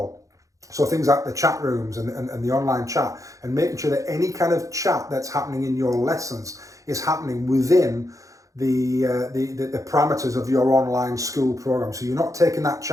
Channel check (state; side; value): late; left; 0.16 ms